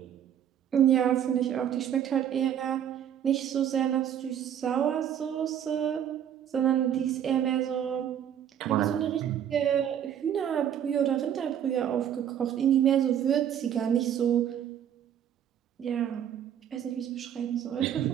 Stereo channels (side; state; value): left; quieter; 9.7 dB